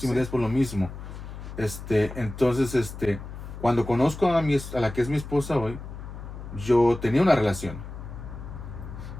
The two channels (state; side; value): noise; left; hum, 11 dB below the sound